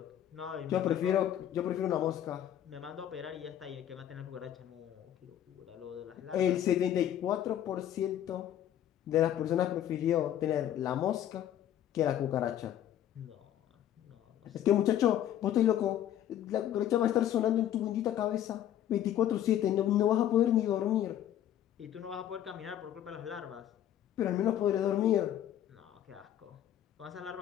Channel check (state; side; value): quieter; right; 11.2 dB